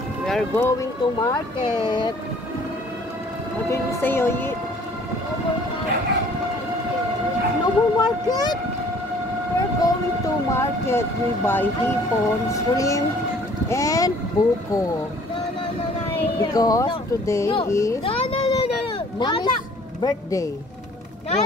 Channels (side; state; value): both; normal; correlation 0.55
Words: going to market. What did you say, Oyi? No more market? We're going to market. We buy hipon, shrimp, and buko. Because today is Mommy's birthday.